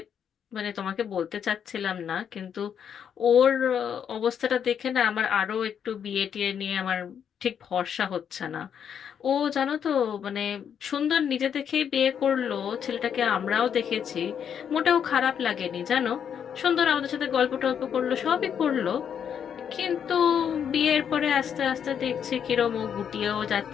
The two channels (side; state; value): right; quieter; 8.1 dB